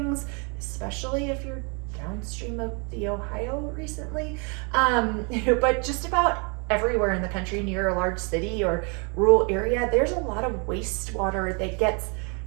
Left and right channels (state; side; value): quieter; left; 34.7 dB